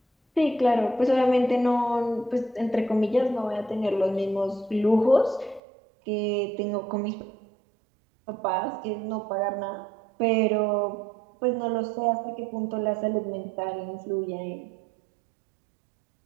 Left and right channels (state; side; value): drops out; left; at 5.6 s